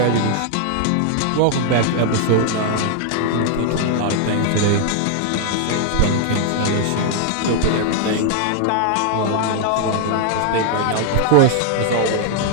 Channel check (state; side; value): different; both; correlation 0.00